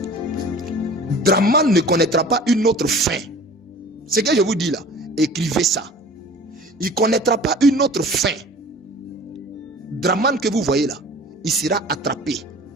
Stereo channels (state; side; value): normal; both; correlation 0.44